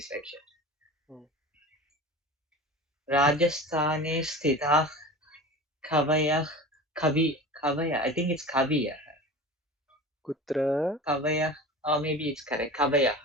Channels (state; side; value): normal; both; correlation 0.34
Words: Rajasthane sthitah kavayah, I think it's kaviyah. Kutra? Kavayah, or maybe it's correct.